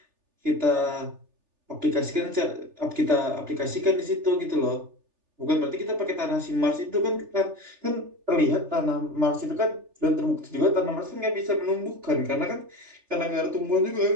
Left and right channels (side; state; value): left; late; 3.3 ms